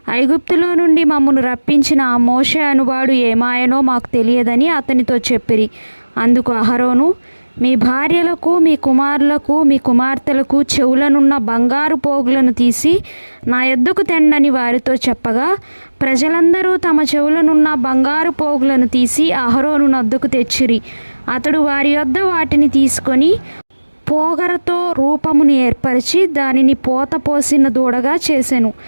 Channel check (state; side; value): inverted; both; correlation -1.00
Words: ఐగుప్తులో నుండి మమ్మను రప్పించిన ఆ మోషే అనువాడు ఏమాయనో మాకు తెలియదని అతనితో చెప్పిరి. అందుకు అహరోను, మీ భార్యలకు, మీ కుమారులకు, మీ కుమార్తెలకు చెవులనున్న బంగారు పోగులను తీసి నా యొద్దకు తెండని వారితో చెప్పగా, ప్రజలందరూ తమ చెవులనున్న బంగారు పోగులను తీసి అహరోను నొద్దకు తెచ్చిరి. అతడు వారి యొద్ద వాటిని తీసుకొని పోగరతో రూపమును ఏర్పరిచి దానిని పోత పోసిన దూడగా చేసెను.